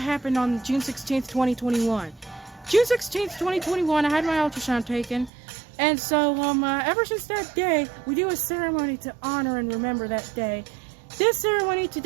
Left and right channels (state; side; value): drops out; left; at 5.3 s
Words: on June 16th, 2021. June 16th, 2021, I had my ultrasound taken, and so ever since that day, we do a ceremony to honor and remember that day. This ceremony